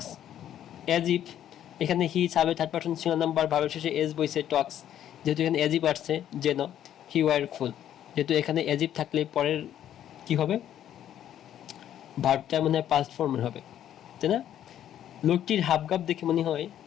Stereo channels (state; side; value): quieter; right; 10.9 dB